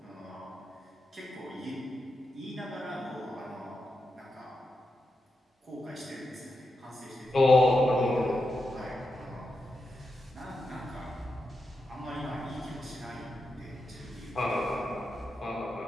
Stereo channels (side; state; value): both; normal; correlation 0.88